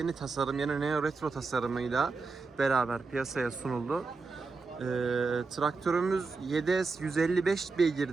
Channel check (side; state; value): left; quieter; 4.2 dB